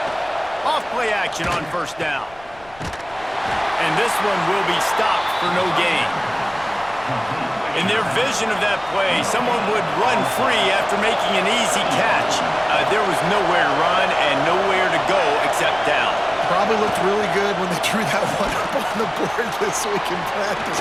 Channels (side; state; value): left; noise; rumble, 24 dB below the sound